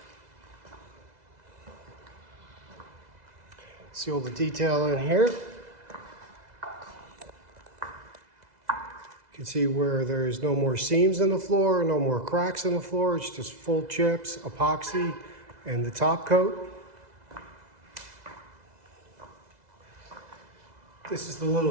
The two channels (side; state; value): left; late; 2.0 ms